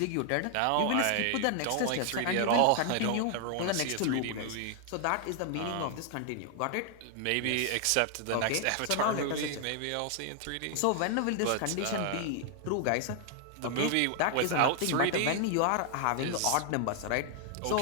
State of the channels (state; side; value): different; both; correlation 0.00